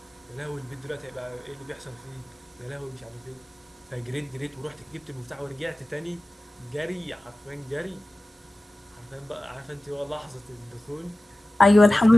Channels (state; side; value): normal; both; correlation 0.96